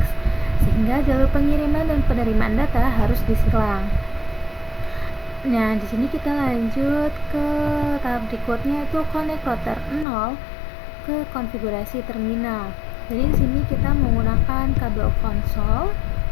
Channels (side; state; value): right; drops out; at 10.1 s